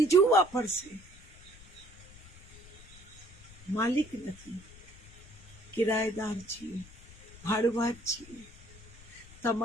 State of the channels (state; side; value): noise; left; rumble, 21 dB below the sound